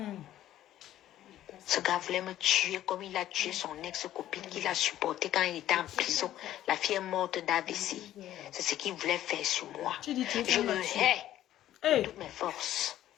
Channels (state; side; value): quieter; right; 12.8 dB